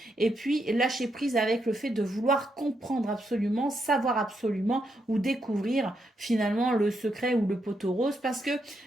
et puis lâcher prise avec le fait de vouloir comprendre absolument, savoir absolument ou découvrir finalement le secret ou le poteau rose, parce que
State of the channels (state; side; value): normal; both; correlation 0.80